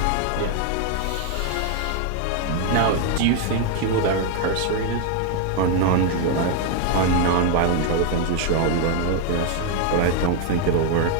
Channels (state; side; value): different; both; correlation 0.01